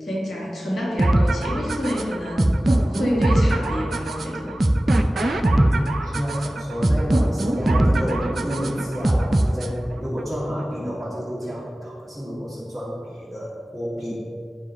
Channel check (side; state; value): both; normal; correlation 0.96